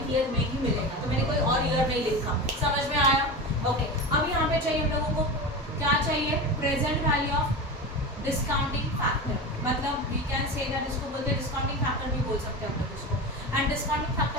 ईयर में ही मिलेगा। तो मैंने कोई और ईयर नहीं लिखा, समझ में आया। ओके, अब यहाँ पे चाहिए हम लोगों को क्या चाहिए, present value of discounting factor. मतलब वी कैन से दैट, इसको बोलते हैं डिस्काउंटिंग फैक्टर भी बोल सकते हैं हम लोग इसको। एंड डिस्काउंटिंग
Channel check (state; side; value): normal; both; correlation 0.26